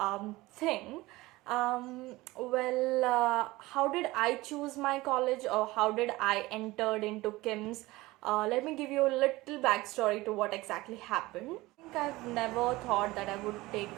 thing. How did I choose my college, or how did I entered into KIMS? Let me give you a little backstory to what exactly happened. I think I've never thought that I would take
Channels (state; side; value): quieter; left; 19.8 dB